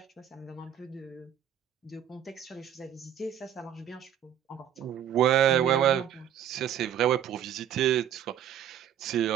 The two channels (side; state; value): left; quieter; 9.9 dB